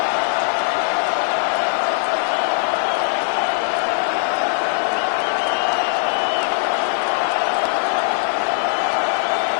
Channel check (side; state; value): right; silent; digital silence